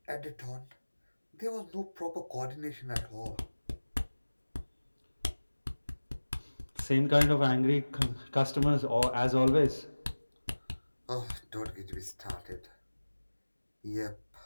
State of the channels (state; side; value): inverted; both; correlation -1.00